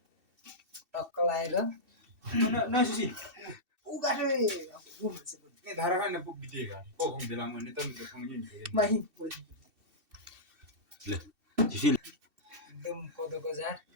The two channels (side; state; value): left; late; 2.7 ms